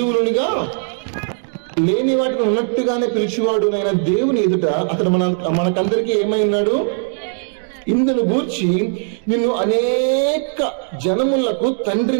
లేని వాటిని ఉన్నట్టుగానే పిలిచేవాడు నైన దేవుని ఎదుట అతడు మనకందరికీ ఏమై ఉన్నాడు? ఇందును గూర్చి నిన్ను అనేక జనములకు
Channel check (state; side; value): silent; left; 67 dB below the other